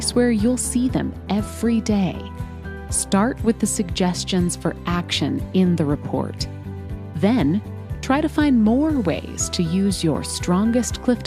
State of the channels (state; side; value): identical; both; correlation 1.00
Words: where you'll see them every day. Start with the suggestions for action in the report. Then, try to find more ways to use your strongest